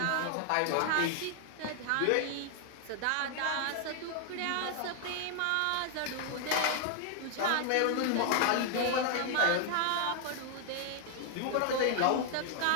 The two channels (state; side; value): different; both; correlation 0.00